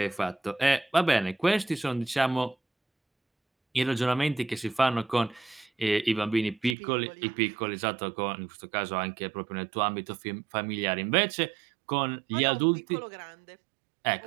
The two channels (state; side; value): drops out; left; at 6.8 s